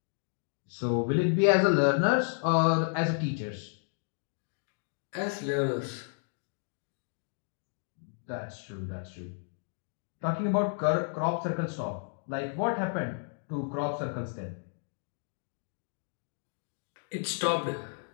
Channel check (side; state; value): right; silent; 56 dB below the other